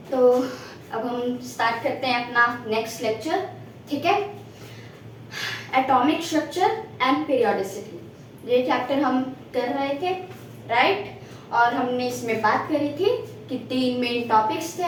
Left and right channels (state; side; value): identical; both; correlation 1.00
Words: तो अब हम स्टार्ट करते हैं अपना नेक्स्ट लेक्चर। ठीक है, एटॉमिक स्ट्रक्चर एंड पीरियोडिसिटी, ये चैप्टर हम कर रहे थे, राइट। और हमने इसमें बात करी थी कि तीन मेन टॉपिक्स थे